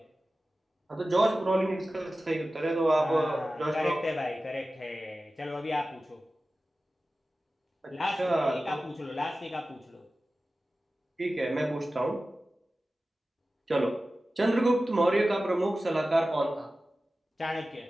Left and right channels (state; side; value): normal; both; correlation 0.95